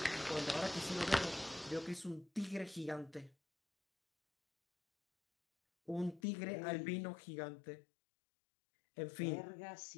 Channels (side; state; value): right; drops out; at 6.2 s